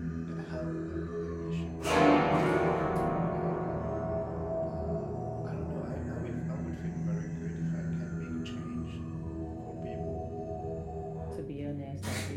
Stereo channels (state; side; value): identical; both; correlation 1.00